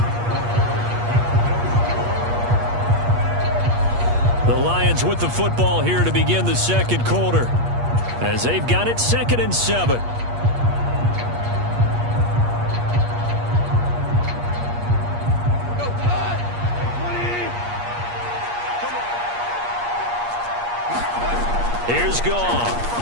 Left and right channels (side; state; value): left; late; 8.4 ms